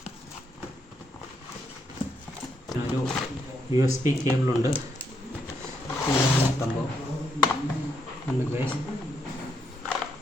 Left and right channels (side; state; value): both; normal; correlation 0.77